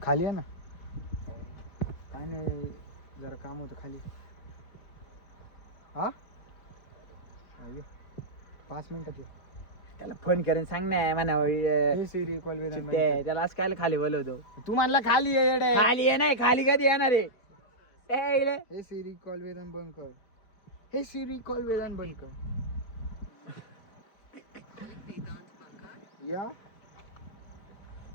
खाली आहे ना. काय नाही जरा काम होतं खाली. हा 5 मिनिटात ये. त्याला फोन करून सांग ना म्हणा सिरी कॉल वेदान त्याला असं काय खाली बोलवतो. तू म्हणला खाली ये येडे. खाली आहे नाही, खाली कधी येणार आहे. हे सिरी कॉल वेदान बंद कर. हे सिरी कॉल वेदान बंद कर. या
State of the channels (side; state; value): right; late; 4.3 ms